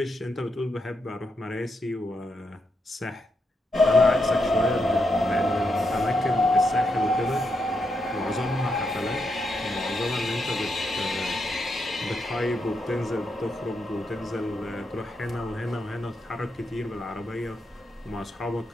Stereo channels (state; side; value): normal; both; correlation 0.82